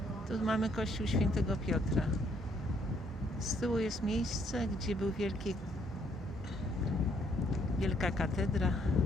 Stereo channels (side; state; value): both; normal; correlation 0.69